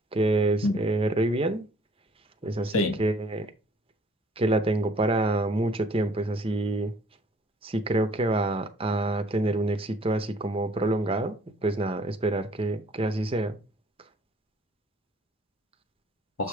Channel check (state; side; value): normal; both; correlation 0.58